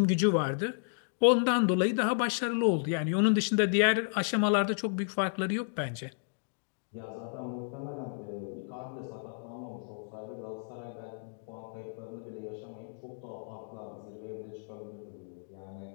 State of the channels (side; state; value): right; silent; digital silence